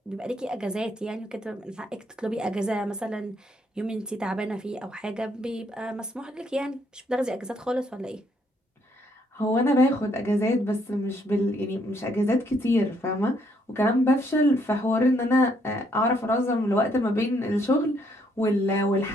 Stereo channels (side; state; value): both; normal; correlation 0.70